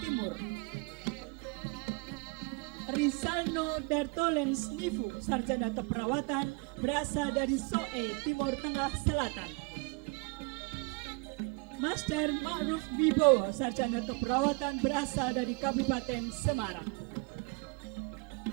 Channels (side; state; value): left; quieter; 30.9 dB